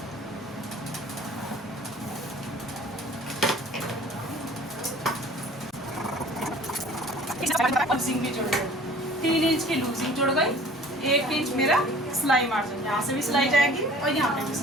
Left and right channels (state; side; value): normal; both; correlation 0.48